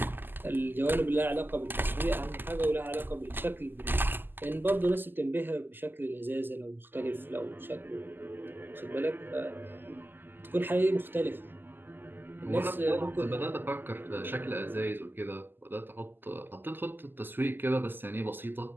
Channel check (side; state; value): left; late; 0.094 ms